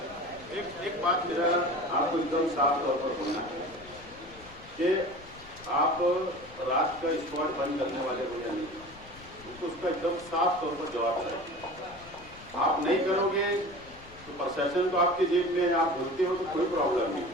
एक बात मेरा आपको एकदम साफ तौर पर बोलना है कि आप रात का स्क्वाड बंद करने वाले हो या नहीं, तो उसका एकदम साफ तौर पर जवाब है। आप नहीं करोगे तो प्रशासन तो आपके जेब में, आप बोलते हो तो कोई प्रॉब्लम नहीं,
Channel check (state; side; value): noise; left; rumble, 21 dB below the sound